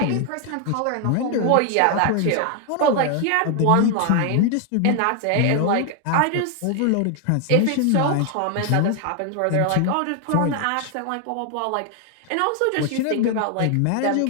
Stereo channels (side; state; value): both; different; correlation 0.00